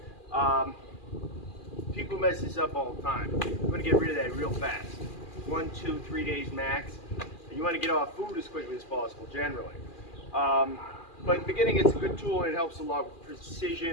People mess this up all the time. You want to get rid of that real fast. 1, 2, 3 days max. And you want to get off food as quickly as possible, generally. But in the beginning, it's a good tool and it helps a lot with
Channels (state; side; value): late; right; 2.4 ms